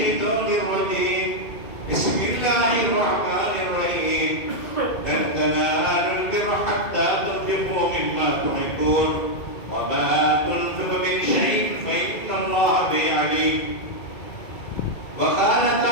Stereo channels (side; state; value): right; late; 2.2 ms